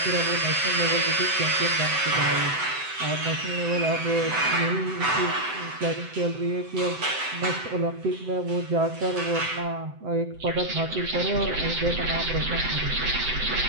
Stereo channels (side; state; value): left; late; 7.8 ms